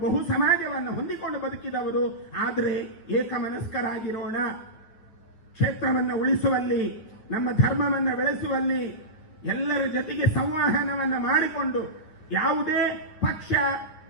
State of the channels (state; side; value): late; right; 9.4 ms